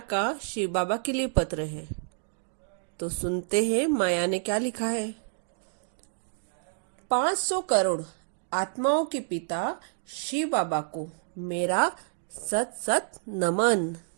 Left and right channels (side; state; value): left; silent; digital silence